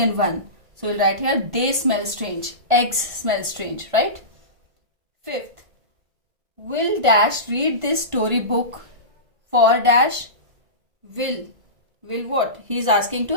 one. So we'll write here they smell strange. Eggs smell strange, right? 5th. Will dash read this storybook for dash? Will what? He is asking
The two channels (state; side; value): late; left; 1.5 ms